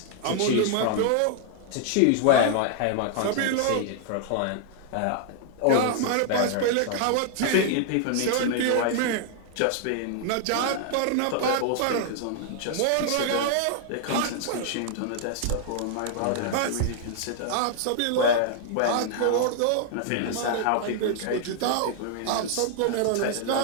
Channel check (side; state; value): both; different; correlation 0.00